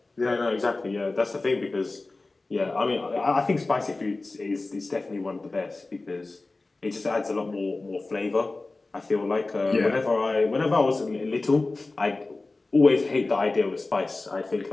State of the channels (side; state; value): right; quieter; 3.3 dB